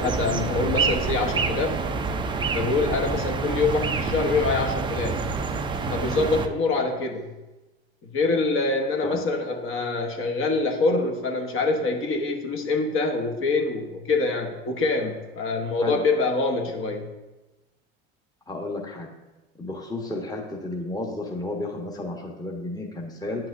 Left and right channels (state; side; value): normal; both; correlation 0.35